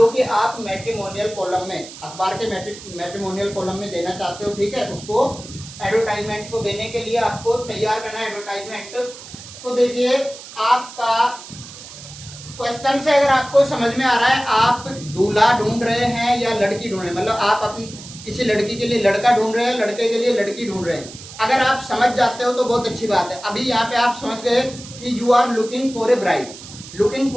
कि आप मैट्रिमोनियल कॉलम में, अखबार के मैट्रिमोनियल कॉलम में देना चाहते हो, ठीक है। उसको एडवर्टाइजमेंट को देने के लिए आपको तैयार करना है एडवर्टाइजमेंट। तो देखिए, आपका क्वेश्चन से अगर आपको समझ में आ रहा है, आप दूल्हा ढूंढ रहे हैं या लड़की ढूंढ रहे हैं, मतलब आप अपनी किसी लड़की के लिए लड़का ढूंढ रहे हैं, लड़के के लिए लड़की ढूंढ रहे हैं। अगर आप समझ जाते हो तो बहुत अच्छी बात है। अभी यहाँ पे आप समझ गए कि you are looking for a bride. Looking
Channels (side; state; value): right; noise; hiss, 15 dB below the sound